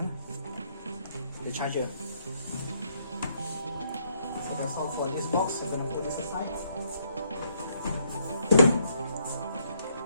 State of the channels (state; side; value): inverted; both; correlation -0.72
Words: The charger. So that's all for this box. I'm gonna put this aside.